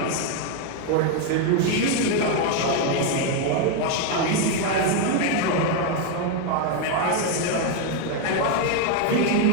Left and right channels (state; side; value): different; both; correlation 0.01